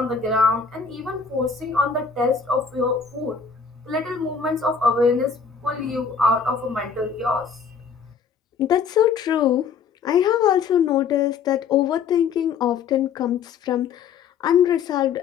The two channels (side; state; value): right; quieter; 6.0 dB